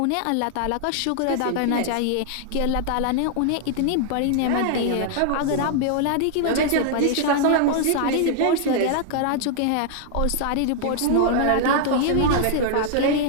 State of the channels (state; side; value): different; both; correlation 0.00